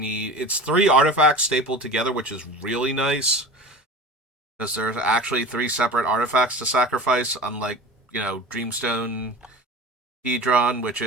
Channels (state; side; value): normal; both; correlation 0.35